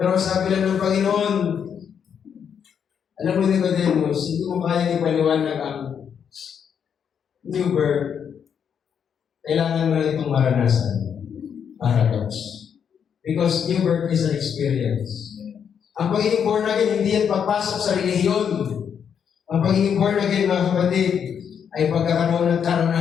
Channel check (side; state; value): right; quieter; 7.7 dB